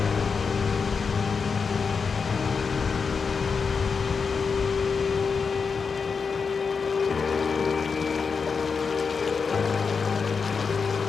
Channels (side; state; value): right; quieter; 5.4 dB